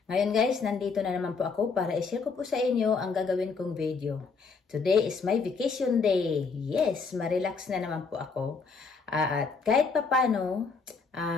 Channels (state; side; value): quieter; right; 4.9 dB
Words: Ngayon guys, nandito na naman po ako para i-share ko po sa inyo ang gagawin kong video. Today is my vacation day. Yes, ma-relax na naman po ako. At kahit papano,